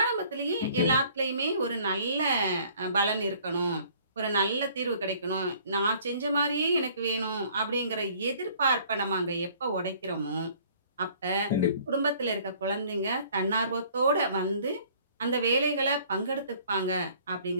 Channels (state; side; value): inverted; both; correlation -0.56